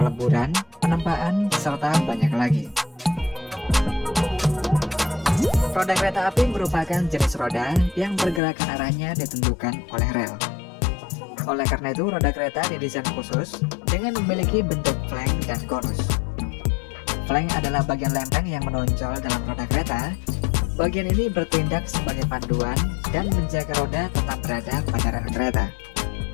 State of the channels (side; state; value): right; drops out; at 8.4 s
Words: penempaan, serta banyak lagi. Roda kereta api merupakan jenis roda yang pergerakan arahnya ditentukan oleh rel. Oleh karena itu, roda kereta didesain khusus dengan memiliki bentuk flank dan konus. Flank adalah bagian lempeng yang menonjol dalam roda kereta. Bagian ini bertindak sebagai panduan dan menjaga roda tetap berada pada rel kereta.